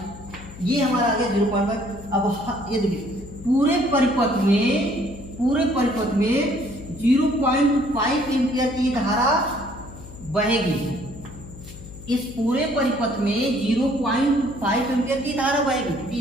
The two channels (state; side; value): noise; left; hum, 16 dB below the sound